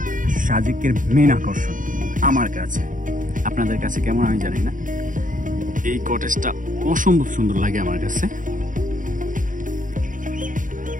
সাজেকের মেন আকর্ষণ আমার কাছে। আপনাদের কাছে কেমন আমি জানি না। এই কটেজটা অসম্ভব সুন্দর লাগে আমার কাছে।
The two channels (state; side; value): late; left; 0.38 ms